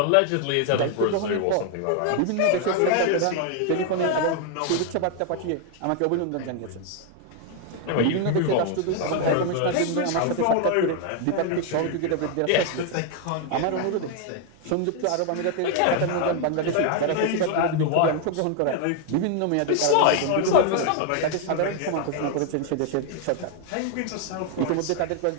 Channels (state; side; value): different; both; correlation 0.00